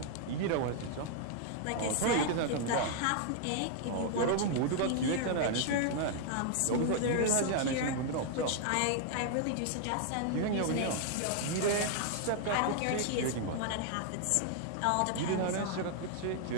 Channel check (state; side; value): different; both; correlation 0.00